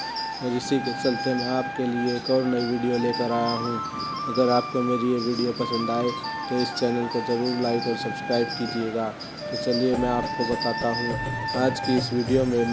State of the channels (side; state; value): both; identical; correlation 1.00